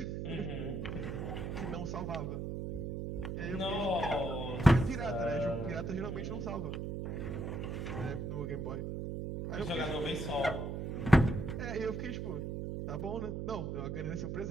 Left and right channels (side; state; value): right; noise; hum, 3 dB below the sound